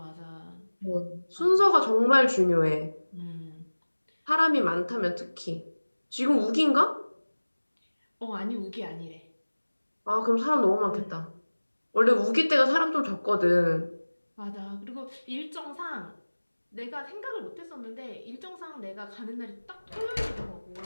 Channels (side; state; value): both; inverted; correlation -1.00